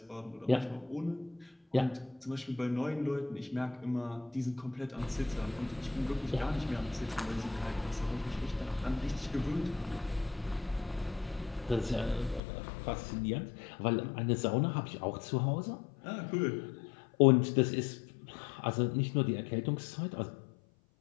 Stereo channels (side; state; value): right; drops out; at 12.4 s